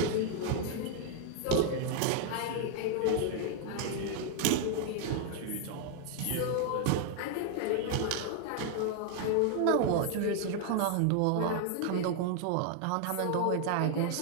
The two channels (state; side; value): different; both; correlation 0.00